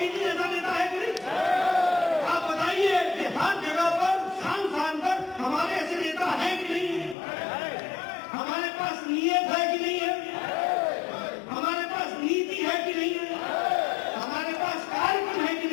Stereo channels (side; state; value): right; drops out; at 7.2 s